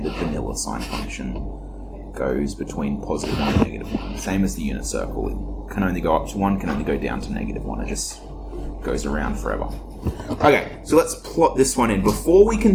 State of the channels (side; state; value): both; identical; correlation 1.00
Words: vanilla sine function goes between +1 and -1. Same as the unit circle. It can only go up to 1, can only go down to -1. It just goes around forever. Okay, so let's plot this one in. Before we can